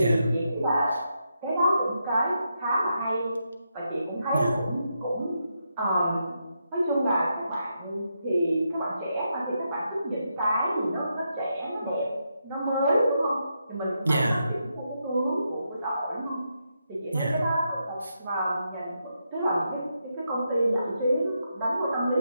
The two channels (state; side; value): inverted; both; correlation -0.83